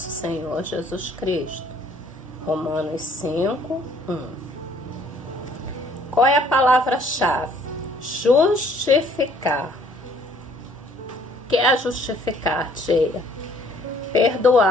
Senhor Jesus Cristo. Romanos 5, 1. Qual é a palavra-chave? Justificar. O que é justificar, tia?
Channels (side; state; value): both; normal; correlation 0.60